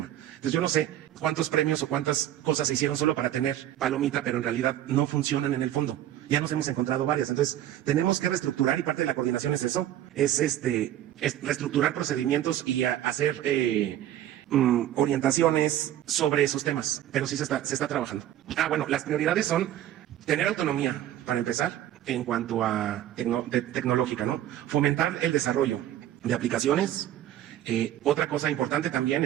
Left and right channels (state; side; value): quieter; left; 12.3 dB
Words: Entonces yo no sé cuántos premios o cuántas cosas se hicieron solo para tener palomita, pero en realidad no funcionan en el fondo. Ya nos hemos encontrado varias. Entonces tenemos que reestructurar y parte de la coordinación es eso, es reestructurar procedimientos y hacer orientaciones sobre esos temas, pero sí se está trabajando. Bueno, las prioridades son tener autonomía, para empezar, en cuanto a tecnológica, ¿no? Fomentar el desarrollo de aplicaciones. Otra cosa importante también